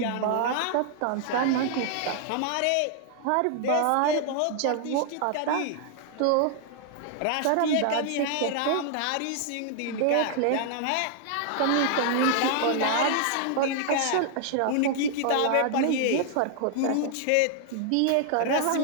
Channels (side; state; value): both; different; correlation 0.00